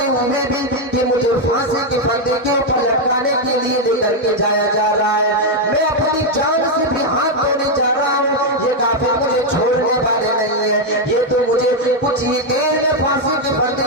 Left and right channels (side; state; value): both; normal; correlation 0.02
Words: ہوئے بھی کہ مجھے پھانسی کے پھندے کے اوپر لٹکانے کے لیے لے کر کے جایا جا رہا ہے، میں اپنی جان سے بھی ہاتھ دھونے جا رہا ہوں، یہ کافر مجھے چھوڑنے والے نہیں ہے، یہ تو مجھے کچھ ہی دیر میں پھانسی کے